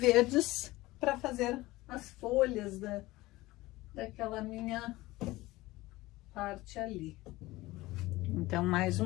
para fazer as folhas daquela minha parte ali. Então, mais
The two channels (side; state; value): right; quieter; 19.1 dB